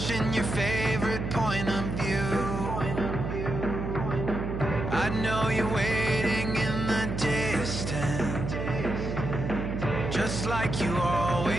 your favorite point of view. I know you're waiting in the distance, just like you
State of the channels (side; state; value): right; noise; hum, 3 dB below the sound